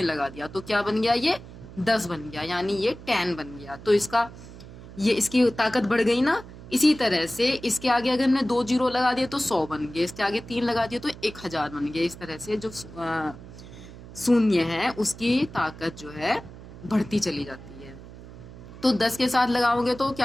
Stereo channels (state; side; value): noise; right; hum, 16 dB below the sound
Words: लगा दिया तो क्या बन गया, ये 10 बन गया, यानी ये 10 बन गया। तो इसकी ताकत बढ़ गई ना। इसी तरह से इसके आगे अगर हमने 2 जीरो लगा दिए तो 100 बन गए, इसके आगे 3 लगा दिए तो 1000 बन गए। इस तरह से जो शून्य है उसकी ताकत जो है बढ़ती चली जाती है। तो 10 के साथ लगाओगे तो